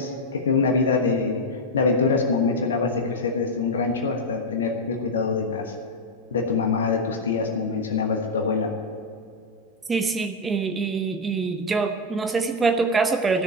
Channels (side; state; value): both; normal; correlation 0.01